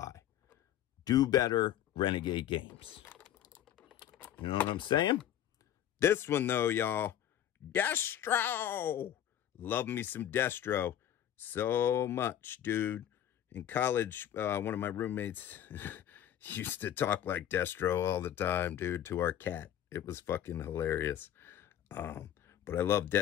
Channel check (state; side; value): quieter; right; 11.0 dB